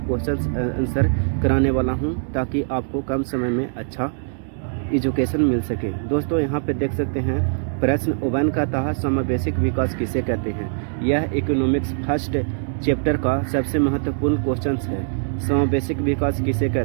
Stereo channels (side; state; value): left; silent; digital silence